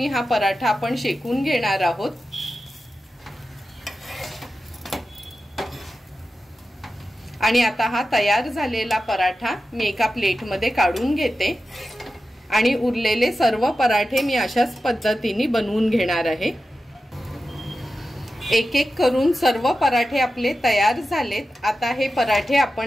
हा पराठा आपण शेकून घेणार आहोत। आणि आता हा तयार झालेला पराठा मी एका प्लेटमध्ये काढून घेते आणि उरलेले सर्व पराठे मी अशाच पद्धतीने बनवून घेणार आहे। एक एक करून सर्व पराठे आपले तयार झालेत। आता हे पराठे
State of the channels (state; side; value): normal; both; correlation 0.92